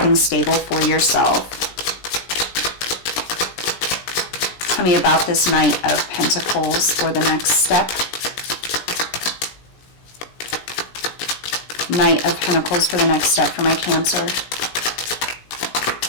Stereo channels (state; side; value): late; right; 17 ms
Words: stable for yourself. Tell me about this Knight of Pentacles for the next step. Knight of Pentacles for the next step for my Cancer.